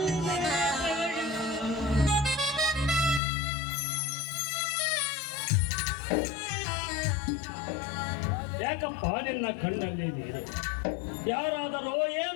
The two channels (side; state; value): right; drops out; at 3.2 s